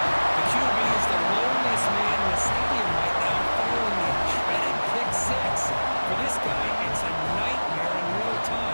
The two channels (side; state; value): both; inverted; correlation -1.00